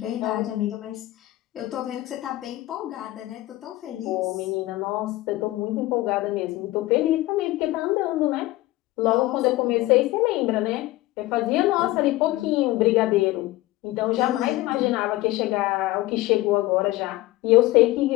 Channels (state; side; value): quieter; right; 18.0 dB